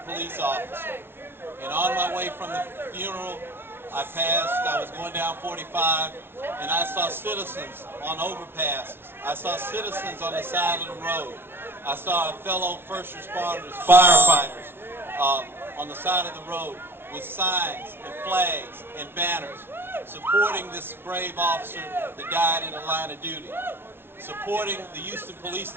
police officer, and on my way from the funeral I was going down 45, and I saw citizens on overpasses. I saw citizens on the side of the road. I saw fellow first responders, firefighters, on the side of the road with signs and flags and banners supporting this brave officer that died in the line of duty, supporting the Houston Police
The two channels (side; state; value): left; late; 0.11 ms